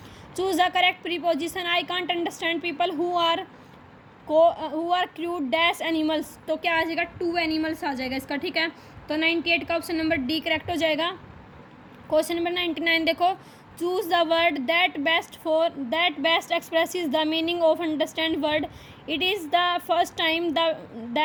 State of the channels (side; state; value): both; identical; correlation 1.00